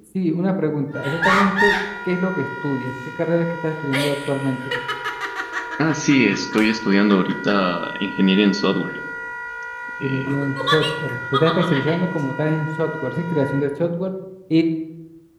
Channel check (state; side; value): identical; both; correlation 1.00